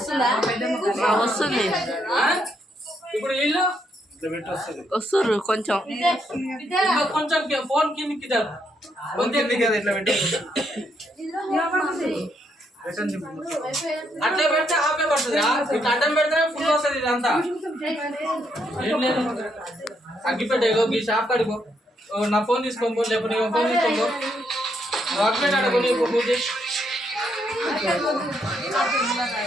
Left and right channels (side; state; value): both; normal; correlation 0.76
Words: వస్తుంది ఇప్పుడు వీళ్ళు వస్తుర్రు కొంచెం కొంచెం ఫోన్ కిందికి ఇట్లా పెట్టి అట్లా పెడితే ఆపే పడుతుంది. ఇట్లా అడ్డం పెడితే ఫుల్ వస్తుంది. ఇదంతా ఏం లేదు. అగ్గిపెట్టే ఈ షాప్ కడుకో, నా ఫోన్ తీసుకోపో, లేకపోతే నీ ఫోన్ తీసుకోపో, అగ్గిపెట్టి అడుగు నీకు పూజ.